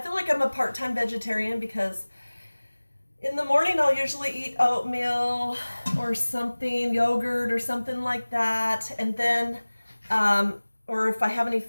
like I'm a part-time vegetarian because in the morning I'll usually eat oatmeal or something, yogurt or something like that. And then, or if I have any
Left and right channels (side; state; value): both; inverted; correlation -1.00